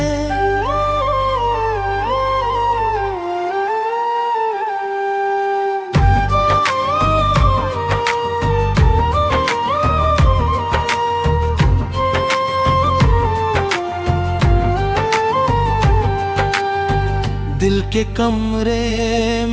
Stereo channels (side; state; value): both; identical; correlation 1.00